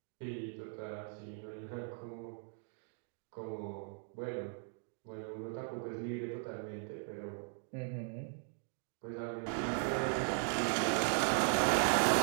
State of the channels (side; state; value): left; silent; 52 dB below the other